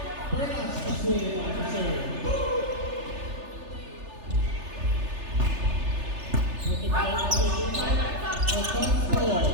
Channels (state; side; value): late; left; 3.3 ms